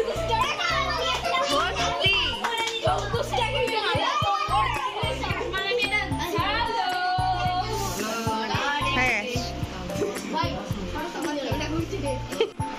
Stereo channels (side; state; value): both; identical; correlation 1.00